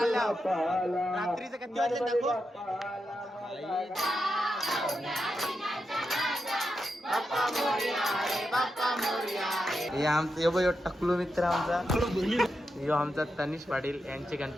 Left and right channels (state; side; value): normal; both; correlation 0.87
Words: रात्रीचं किती वाजले दाखव. हे आमचं टकलू मित्र आमचा. यो आमचा तनिष पाटील यांचे